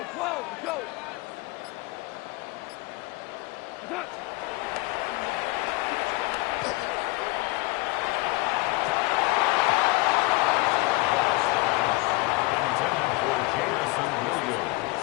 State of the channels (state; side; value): quieter; right; 22.7 dB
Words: 12, go. Done. Intended for Jamison